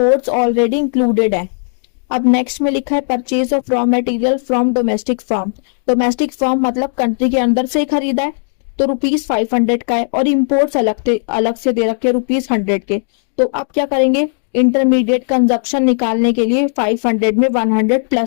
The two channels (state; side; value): silent; right; 69 dB below the other